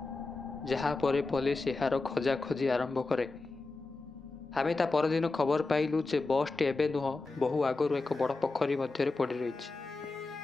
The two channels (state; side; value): quieter; right; 3.5 dB